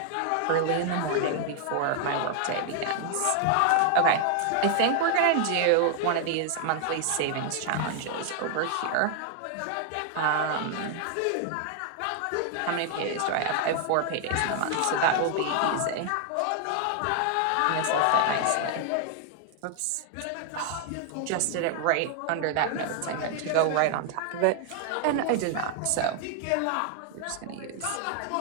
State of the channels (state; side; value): different; both; correlation 0.00